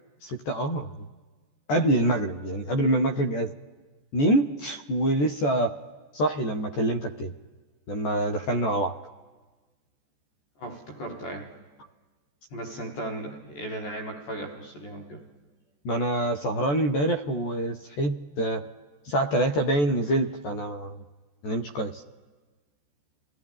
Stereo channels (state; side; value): late; right; 14 ms